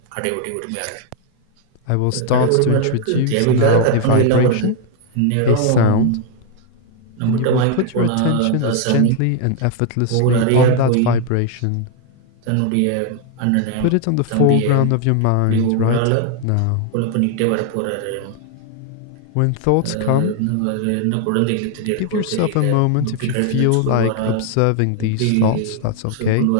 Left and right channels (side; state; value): both; different; correlation 0.00